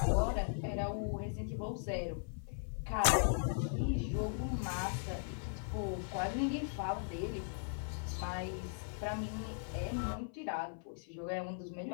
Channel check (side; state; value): right; silent; 52 dB below the other